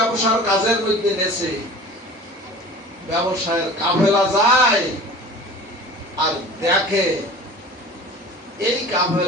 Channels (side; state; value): both; normal; correlation 0.40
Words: কাজের মধ্যে নেছে, ব্যবসায়ের কাফেলা যায় আর দেখে এই